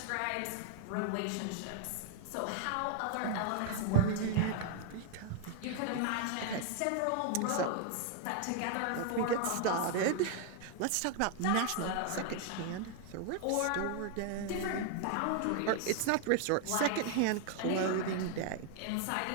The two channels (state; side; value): different; both; correlation 0.00